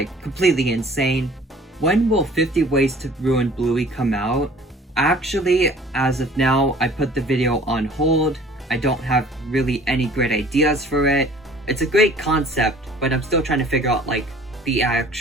completely insane. When will 50 Ways to Ruin Bluey come out? Actually, as of now, I put the video on hold. I don't have really any great ideas for it. It's a great concept, but I'm still trying to figure out like the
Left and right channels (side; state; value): both; normal; correlation 0.51